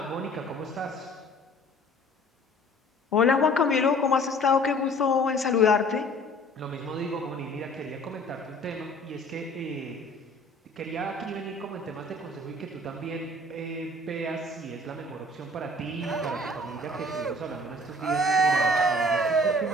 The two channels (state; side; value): normal; both; correlation 0.51